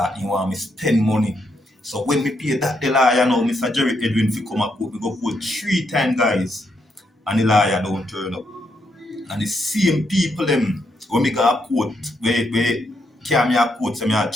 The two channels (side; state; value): both; normal; correlation 0.78